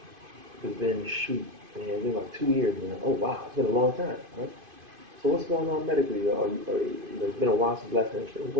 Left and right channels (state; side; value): late; left; 2.5 ms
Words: been shoot, man, it's been like 2 years now. Oh wow, it's been a long time, right? So what's going on medically? You know, it's been a while since last had insurance.